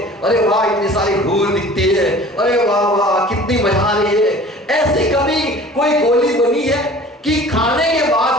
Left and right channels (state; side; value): normal; both; correlation 0.45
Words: अरे वाह इतनी सारी हूर दिखती है, अरे वाह वाह कितनी मजा आ रही है। ऐसी कभी कोई गोली बनी है कि खाने के